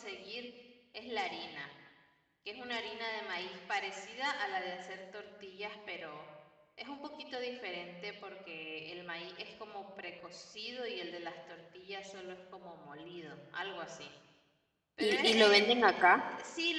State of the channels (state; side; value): identical; both; correlation 1.00